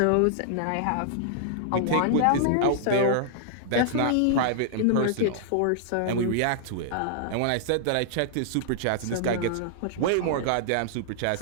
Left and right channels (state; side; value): different; both; correlation -0.01